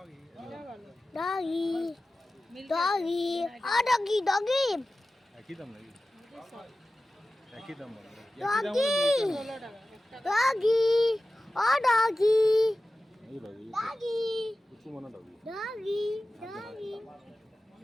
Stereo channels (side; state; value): both; normal; correlation 0.95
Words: doggy doggy ও ডগি ডগি একই দাম নাকি? একই দাম ডগি ডগি ও ডগি এই ডগি ডগি কিছু মনে ডগি। ডগি ডগি